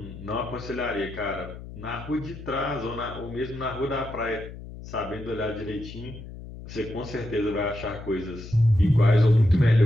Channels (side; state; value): left; noise; hum, 13 dB below the sound